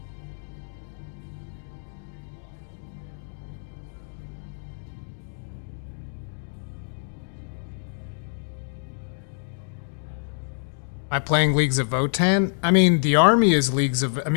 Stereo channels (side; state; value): right; silent; digital silence